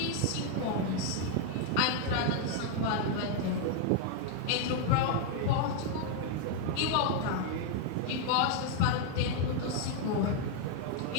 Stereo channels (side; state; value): both; different; correlation 0.00